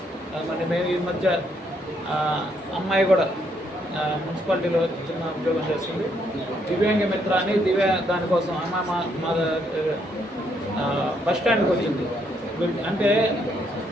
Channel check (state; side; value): normal; both; correlation 0.73